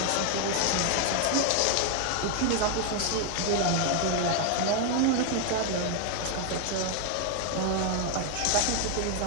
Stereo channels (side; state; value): both; different; correlation 0.00